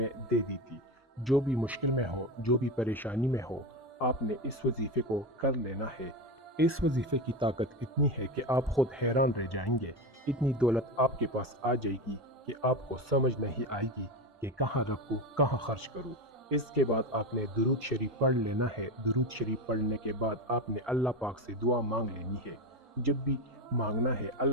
دے دی تھی۔ جو بھی مشکل میں ہو، جو بھی پریشانی میں ہو، آپ نے اس وظیفے کو کر لینا ہے۔ اس وظیفے کی طاقت اتنی ہے کہ آپ خود حیران رہ جائیں گے۔ اتنی دولت آپ کے پاس آ جائے گی کہ آپ کو سمجھ نہیں آئے گی کہ کہاں رکھوں، کہاں خرچ کروں۔ اس کے بعد آپ نے درود شریف پڑھ لینا ہے۔ درود شریف پڑھنے کے بعد آپ نے اللہ پاک سے دعا مانگ لینی ہے۔ جب بھی مانگنا ہے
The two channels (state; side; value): normal; both; correlation 0.19